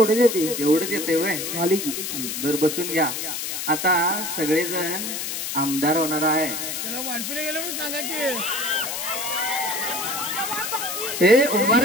देते. एवढंच येते वय. झाली की बर बसून घ्या. आता सगळेजण आमदार होणार आहे. हे उभा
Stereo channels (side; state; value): left; noise; hiss, 4 dB below the sound